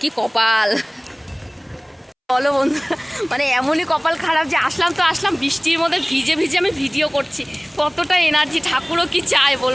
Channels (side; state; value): both; identical; correlation 1.00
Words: কি কপাল বলো বন্ধু। মানে এমনই কপাল খারাপ যে আসলাম তো আসলাম, বৃষ্টির মধ্যে ভিজে ভিজে আমি ভিডিও করছি। কতটা এনার্জি, ঠাকুরও কি চায়